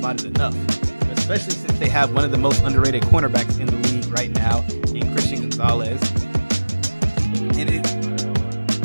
it enough, especially since they have one of the most underrated cornerbacks in the league right now in Christian Gonzalez. And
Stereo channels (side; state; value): both; inverted; correlation -1.00